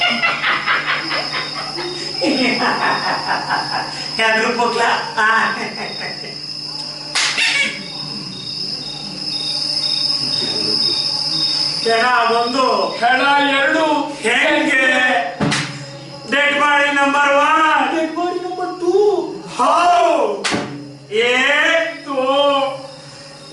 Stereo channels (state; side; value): identical; both; correlation 1.00